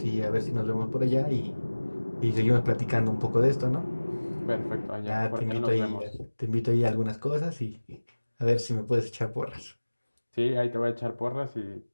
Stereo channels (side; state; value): both; inverted; correlation -1.00